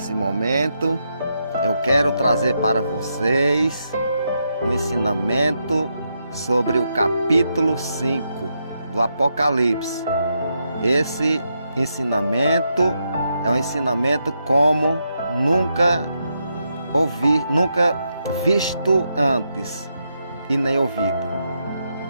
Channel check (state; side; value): inverted; both; correlation -0.82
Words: momento eu quero trazer para vocês um ensinamento sobre o capítulo 5 do Apocalipse. Esse ensinamento é um ensinamento como nunca visto antes e nem ouvido.